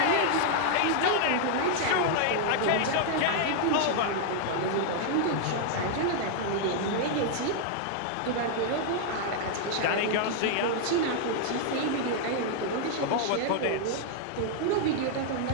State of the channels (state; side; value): different; both; correlation 0.00